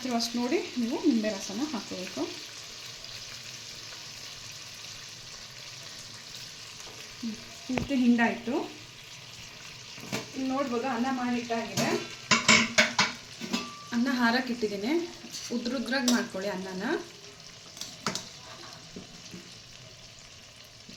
ಅಷ್ಟು ನೋಡಿ ನೀವು ನಿಂಬೆ ರಸನ ಹಾಕೋಬೇಕು. ಪೂರ್ತಿ ಹಿಂಡಾಯಿತು. ನೋಡ್ಬೋದು ಅನ್ನ ಮಾಡಿಟ್ಟಾಗಿದೆ. ಅನ್ನ ಹಾರಕ್ಕೆ ಇಟ್ಟಿದ್ದೀನಿ, ಉದ್ರುದ್ರಾಗಿ ಮಾಡ್ಕೊಳ್ಳಿ ಅನ್ನನ.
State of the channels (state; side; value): identical; both; correlation 1.00